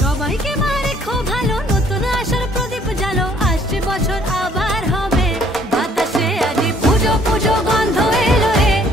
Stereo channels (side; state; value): both; normal; correlation 0.62